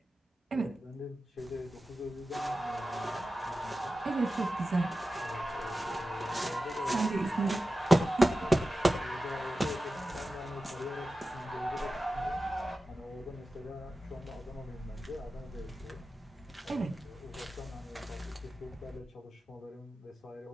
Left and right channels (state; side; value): normal; both; correlation 0.93